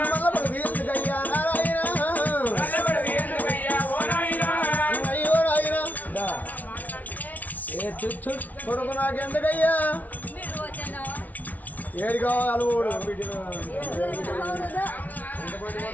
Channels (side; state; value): right; late; 0.075 ms